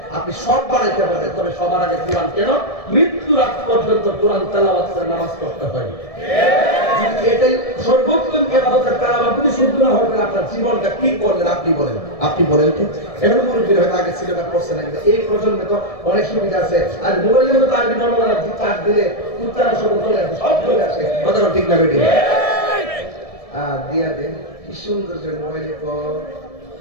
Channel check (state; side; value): late; right; 1.7 ms